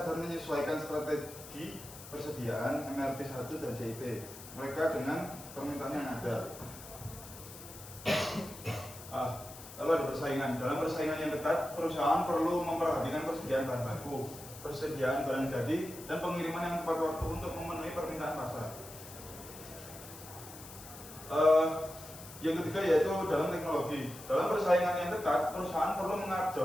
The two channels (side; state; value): left; noise; hiss, 15 dB below the sound